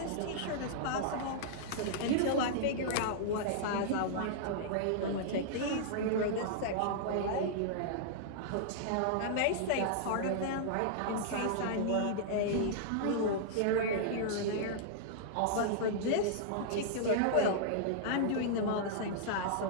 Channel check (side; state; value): both; different; correlation -0.02